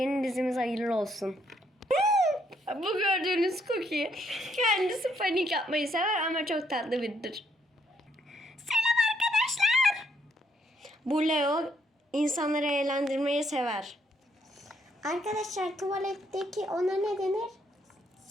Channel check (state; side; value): normal; both; correlation 0.72